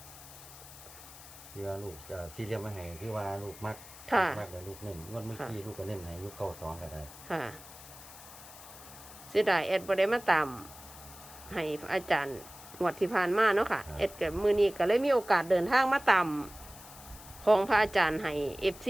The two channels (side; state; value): left; noise; hiss, 17 dB below the sound